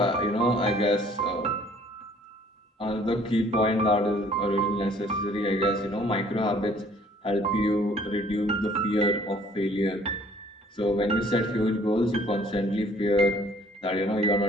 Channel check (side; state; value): both; normal; correlation 0.58